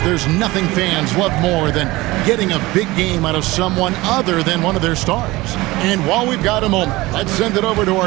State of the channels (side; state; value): left; quieter; 20.2 dB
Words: There's nothing fans love more than getting a big game out of someone other than one of their stars. And while we've got a moment, let's send it over to